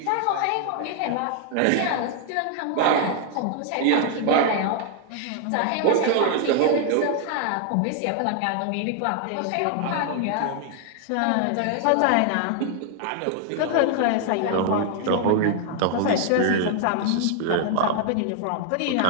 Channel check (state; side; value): different; both; correlation 0.00